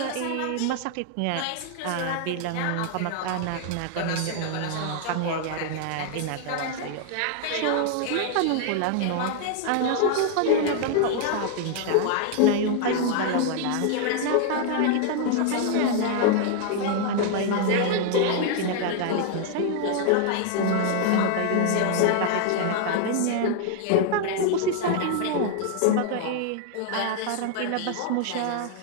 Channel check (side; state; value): both; different; correlation 0.00